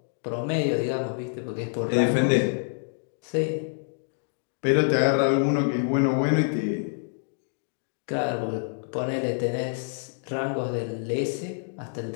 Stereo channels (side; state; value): right; silent; digital silence